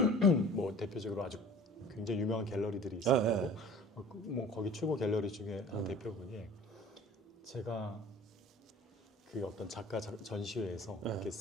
뭐 대표적으로 아주 굉장히 유명한 갤러리들이 있어요. 뭐 거기 최고 갤러리 중에 한 대표분이 제가 그 어떤 작가 전시회에서 이렇게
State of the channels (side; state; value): both; normal; correlation 0.45